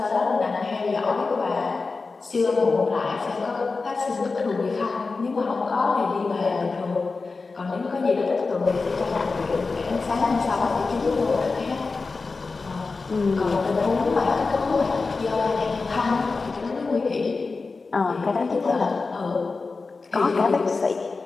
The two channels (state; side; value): quieter; right; 4.1 dB